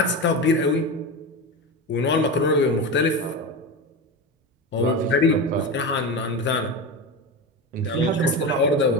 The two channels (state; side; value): normal; both; correlation 0.21